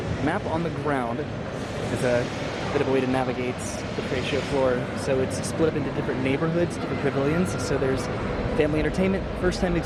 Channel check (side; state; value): both; identical; correlation 1.00